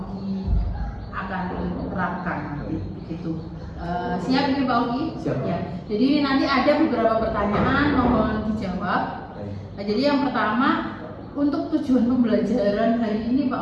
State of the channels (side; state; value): both; identical; correlation 1.00